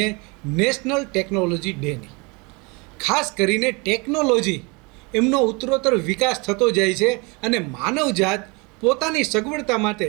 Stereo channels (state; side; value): quieter; left; 28.5 dB